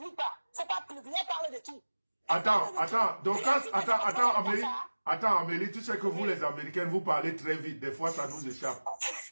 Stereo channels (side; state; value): both; inverted; correlation -1.00